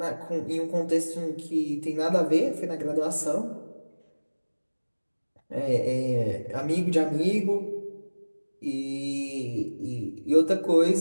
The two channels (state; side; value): inverted; both; correlation -1.00